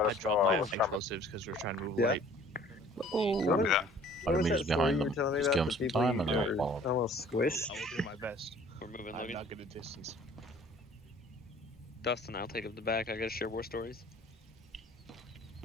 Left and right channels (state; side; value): normal; both; correlation 0.52